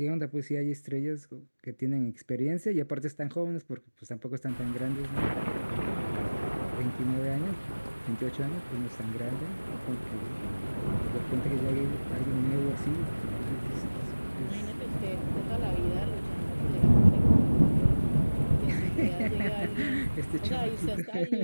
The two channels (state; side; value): inverted; both; correlation -1.00